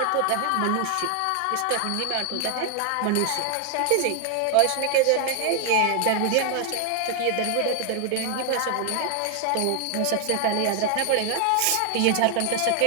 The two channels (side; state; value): both; different; correlation 0.00